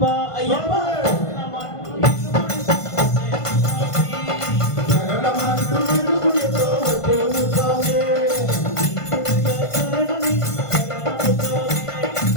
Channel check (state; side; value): late; right; 1.5 ms